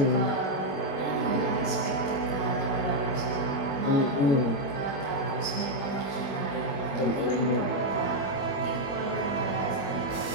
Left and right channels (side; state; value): right; late; 21 ms